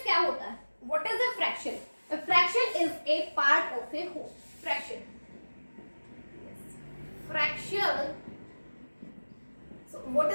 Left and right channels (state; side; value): inverted; both; correlation -1.00